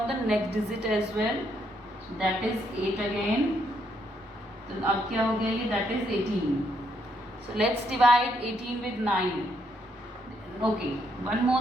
the next digit as well. So that is 8 again. तो अब क्या हो गया ये, that is 18. So let's divide 18 with 9. Okay, one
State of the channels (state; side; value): normal; both; correlation 0.74